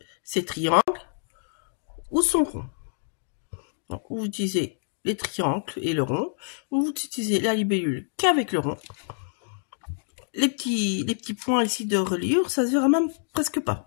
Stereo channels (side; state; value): right; silent; digital silence